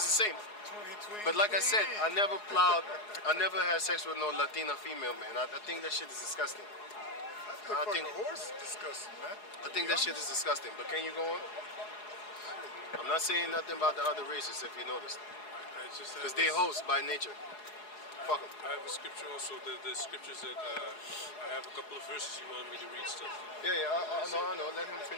the same. 20, But like I said, I never had sex with no Latina female, man. I think that shit is disgusting. I I think- think horse is disgusting, man. I think that shit is disgusting. But can you go on? I'm not saying nothing about the other races, if you noticed. I just have Because they this- host by nature. Fuck them. I have a scripture also. The scriptures that I have a couple of verses you want me to read still. Yeah, I know. Let him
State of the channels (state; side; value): late; right; 4.8 ms